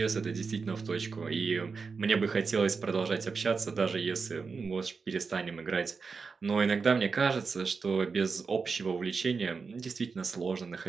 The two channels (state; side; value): quieter; left; 4.9 dB